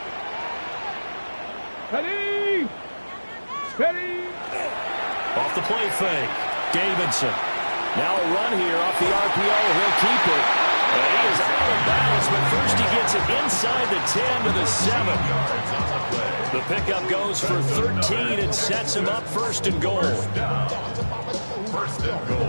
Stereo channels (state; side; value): inverted; both; correlation -1.00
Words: Ready? Ready? Off the play fake. Davidson. Now a run here off the RPO. He'll keep it. And he is out of bounds, but first he gets it inside the 10 to the 7. The pickup goes for 13 and sets him up 1st and goal. 1st and